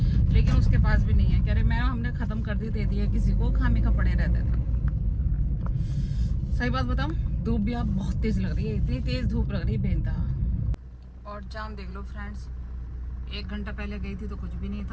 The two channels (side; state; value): both; identical; correlation 1.00